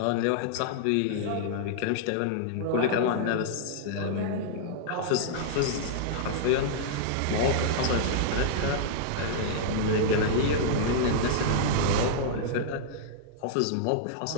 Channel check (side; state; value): both; different; correlation -0.02